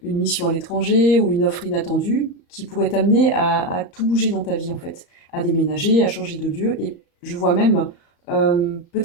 une mission à l'étranger ou une offre inattendue qui pourrait t'amener à tout bouger dans ta vie en fait, à déménager, à changer de lieu. Et je vois même,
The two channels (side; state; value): right; late; 35 ms